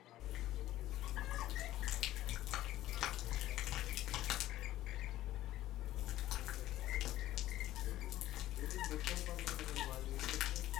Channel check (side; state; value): right; quieter; 14.6 dB